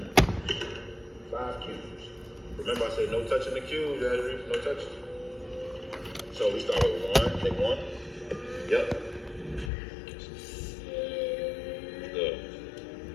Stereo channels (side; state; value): right; drops out; at 9.7 s